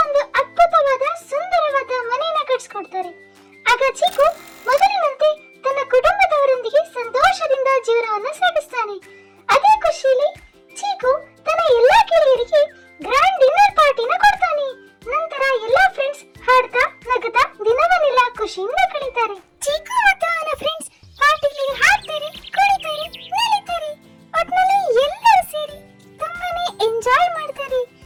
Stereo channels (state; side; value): identical; both; correlation 1.00